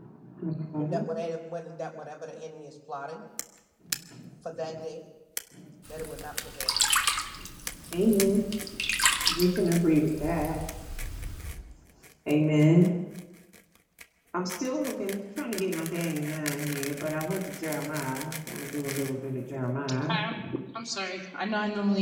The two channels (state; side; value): identical; both; correlation 1.00